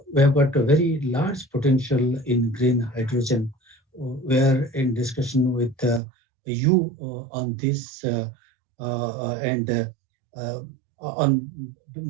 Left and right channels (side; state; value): left; drops out; at 6.0 s